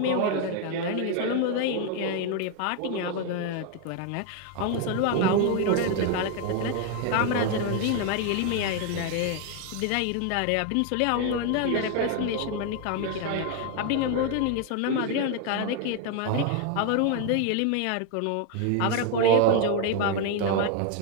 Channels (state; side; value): different; both; correlation 0.01